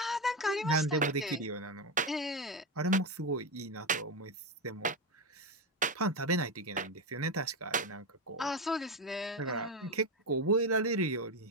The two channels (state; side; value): normal; both; correlation 0.12